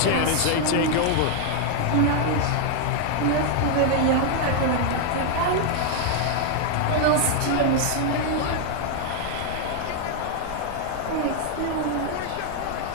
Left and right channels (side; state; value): both; different; correlation 0.00